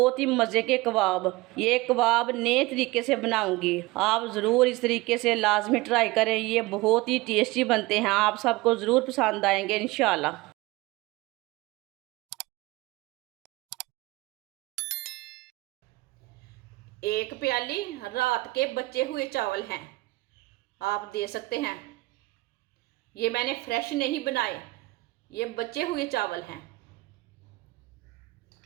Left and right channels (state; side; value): quieter; left; 21.0 dB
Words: ही मज़े के कबाब। ये कबाब नए तरीके से बनाऊंगी, आप ज़रूर इस तरीके से लाजमी ट्राई करें। ये बहुत ही टेस्टी बनते हैं, आप सबको ज़रूर पसंद आएंगे इंशाल्लाह। एक प्याली रात के बचे हुए चावल हैं, आप दे सकते हैं। ये मैंने फ्रेश नहीं बनाए, ये बचे हुए चावल हैं,